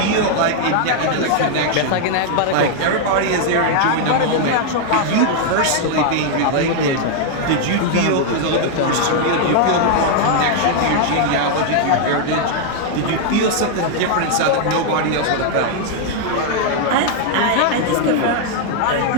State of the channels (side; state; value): both; different; correlation 0.00